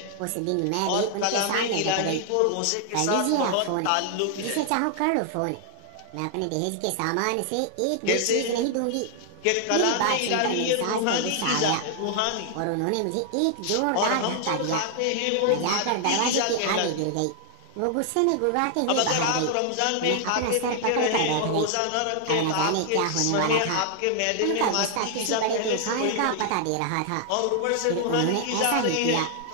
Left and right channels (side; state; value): both; different; correlation 0.00